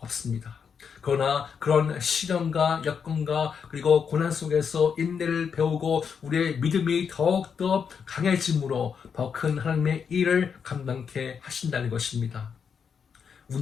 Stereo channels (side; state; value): right; quieter; 6.7 dB